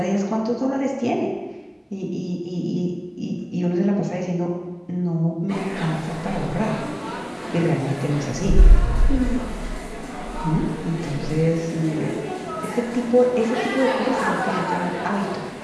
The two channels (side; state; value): both; identical; correlation 1.00